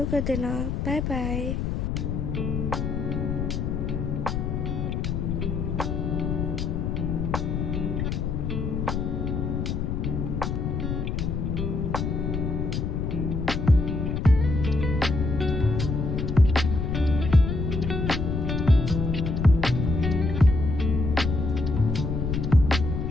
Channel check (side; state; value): left; noise; rumble, 1 dB below the sound